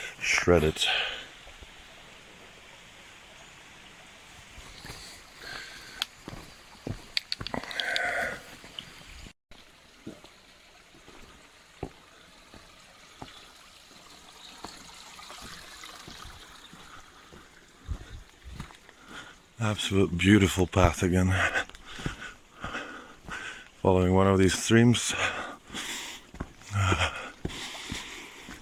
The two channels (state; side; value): identical; both; correlation 1.00